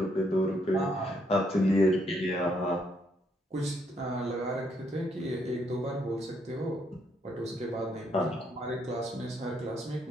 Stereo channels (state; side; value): normal; both; correlation 0.73